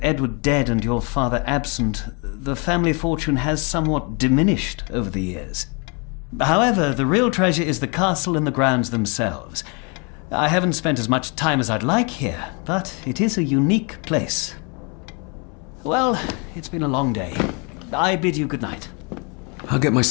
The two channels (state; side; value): quieter; right; 33.3 dB